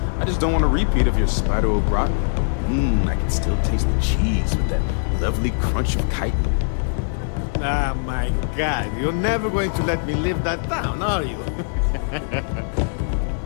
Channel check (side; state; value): right; silent; digital silence